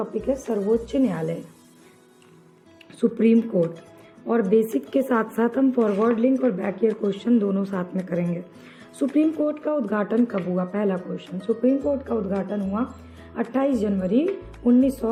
है सर्वोच्च न्यायालय, सुप्रीम कोर्ट, और बेसिक के साथ साथ हम फॉरवर्ड लिंक और बैक ईयर क्वेश्चन दोनों साथ में करेंगे। सुप्रीम कोर्ट का उद्घाटन कब हुआ? पहला क्वेश्चन, सुप्रीम कोर्ट का उद्घाटन हुआ 28 जनवरी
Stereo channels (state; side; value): identical; both; correlation 1.00